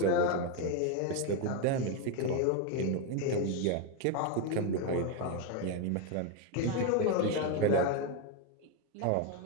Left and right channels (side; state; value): both; different; correlation 0.02